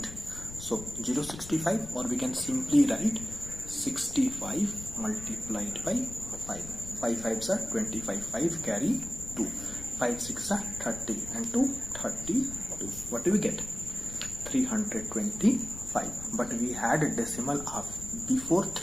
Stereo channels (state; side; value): noise; left; rumble, 13 dB below the sound